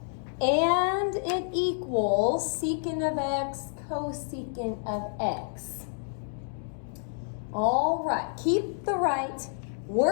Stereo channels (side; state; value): right; silent; digital silence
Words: and it equals secant of x cosecant of x. All right, keep the right,